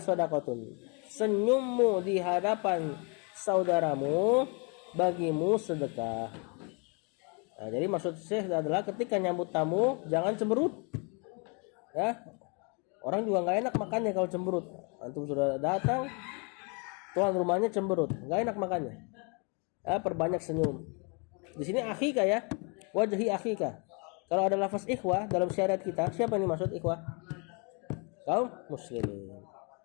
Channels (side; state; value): right; quieter; 34.1 dB